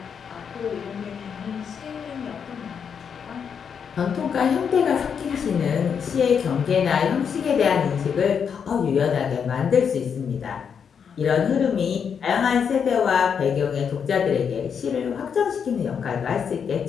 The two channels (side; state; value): right; quieter; 7.0 dB